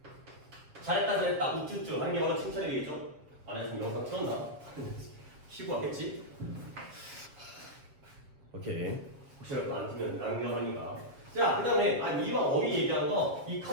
잘했다 우쭈쭈 하는 게 바로 칭찬이 되겠죠. 안에 지금 영상 틀었나? 쉬고 왔겠지? 오케이. 혹시라도 안 틀면 낭비하니까. 자, 그 다음에 이왕 어휘 얘기하는 거 이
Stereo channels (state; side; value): late; left; 7.6 ms